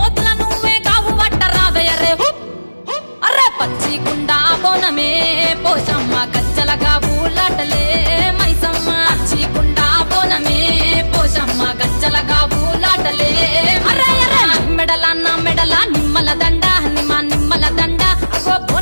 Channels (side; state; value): both; inverted; correlation -1.00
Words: నువ్వే కావు వట్ట రావయ్యరే అరే పచ్చి కుండా బోనమే పోషమ్మ గజ్జలగా ఊలాటలే మైసమ్మ పచ్చి కుండా బోనమే పోషమ్మ గజ్జలగా ఊలాటలే అరే అరే మెడల నా మెడల నిమ్మల దండ నిమ్మల దండ అగో